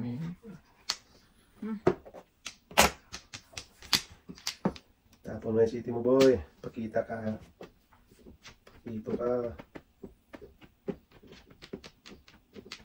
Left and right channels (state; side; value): identical; both; correlation 1.00